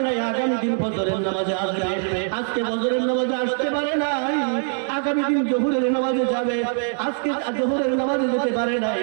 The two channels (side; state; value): left; silent; 57 dB below the other